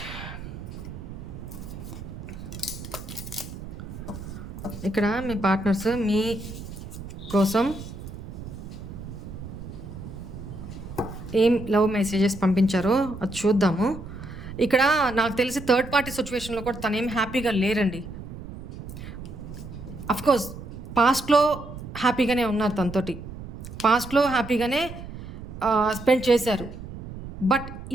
ఇక్కడ మీ పార్ట్నర్స్ మీ కోసం ఏం లవ్ మెసేజెస్ పంపించారో అది చూద్దాము. ఇక్కడ నాకు తెలిసి థర్డ్ పార్టీ సిట్యుయేషన్‌లో కూడా తనేం హ్యాపీగా లేరండి. అఫ్‌కోర్స్ పాస్ట్‌లో హ్యాపీగానే ఉన్నారు తనతోటి. పాస్ట్‌లో హ్యాపీగానే స్పెండ్ చేశారు. బట్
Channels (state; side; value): noise; right; rumble, 11 dB below the sound